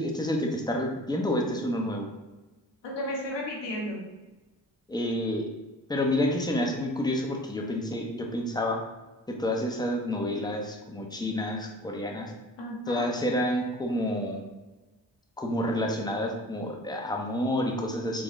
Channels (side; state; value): both; normal; correlation 0.46